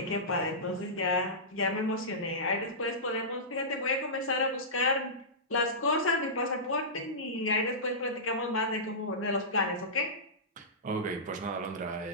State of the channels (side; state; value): both; normal; correlation -0.17